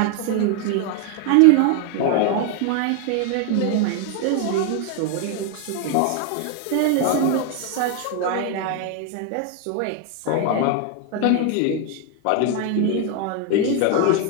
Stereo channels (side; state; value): both; different; correlation 0.01